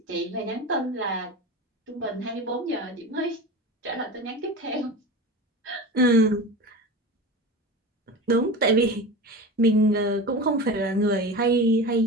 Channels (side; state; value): both; normal; correlation 0.30